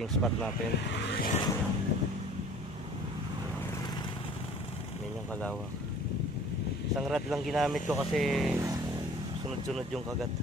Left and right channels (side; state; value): both; normal; correlation 0.49